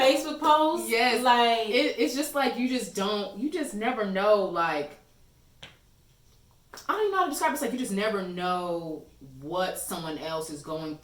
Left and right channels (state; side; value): identical; both; correlation 1.00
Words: post, yes, like it's just like you just never know. Like, I don't even know how to describe it. It's like you just never know what someone else is going